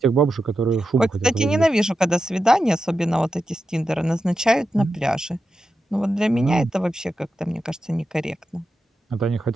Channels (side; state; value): both; normal; correlation 0.89